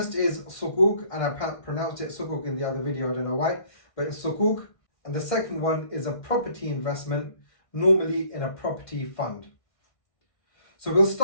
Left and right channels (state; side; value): late; right; 1.6 ms